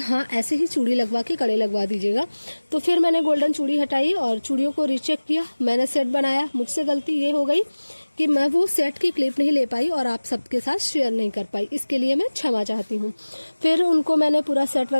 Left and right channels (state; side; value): inverted; both; correlation -1.00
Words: ऐसे ही चूड़ी लगवा के कड़े लगवा दीजिएगा। तो फिर मैंने गोल्डन चूड़ी हटाई और चूड़ियों को रीचेक किया, मैंने सेट बनाया। मुझसे गलती ये हो गई कि मैं वो सेट की क्लिप नहीं ले पाई और आप सबके साथ शेयर नहीं कर पाई, इसके लिए मैं क्षमा चाहती हूँ। फिर उनको मैंने पूरा सेट